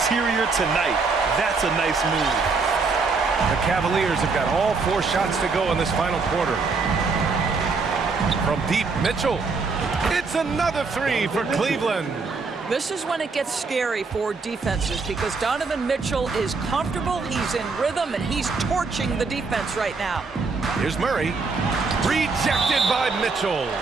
tonight. That's a nice move. The Cavaliers have got all 4 shots to go in this final quarter. From deep, Mitchell. It's another 3 for Cleveland. This is when it gets scary for defenses because Donovan Mitchell is comfortable, he's in rhythm, and he's torching the defense right now. Here's Murray. Rejected by Mitchell.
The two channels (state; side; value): quieter; left; 4.4 dB